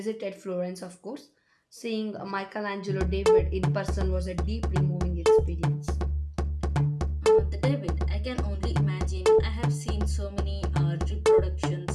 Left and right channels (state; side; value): identical; both; correlation 1.00